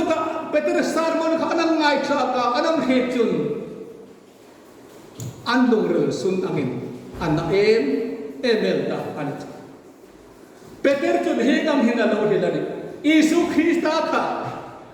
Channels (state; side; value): identical; both; correlation 1.00